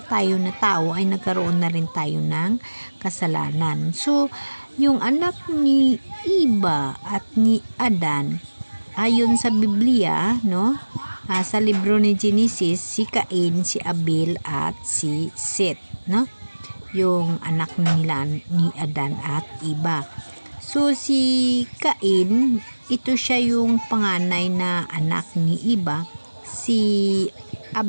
tayo na tao ay nagkaroon na rin tayo ng kasalanan. So, yung anak ni Iba at ni Adan, ayon sa Biblia, sa libro ni Genesis, si Cain, si Abel at si Seth, yung anak nila ni Adan at Iba. So, si Cain, ito siya yung panganay na anak ni Iba. Si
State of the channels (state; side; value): inverted; both; correlation -1.00